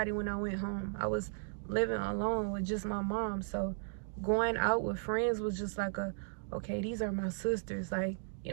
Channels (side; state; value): left; silent; digital silence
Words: when I went home. I was living alone with just my mom. So going out with friends was just like okay, these are my sisters, like, you